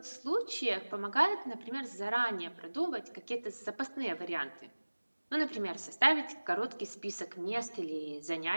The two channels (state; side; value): inverted; both; correlation -1.00